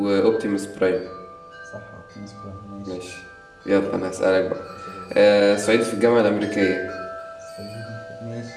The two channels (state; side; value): identical; both; correlation 1.00